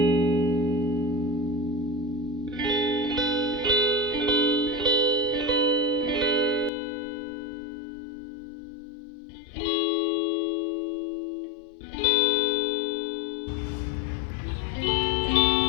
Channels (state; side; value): drops out; right; at 6.7 s